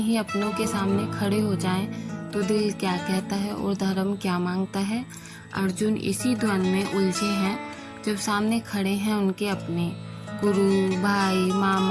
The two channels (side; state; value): both; identical; correlation 1.00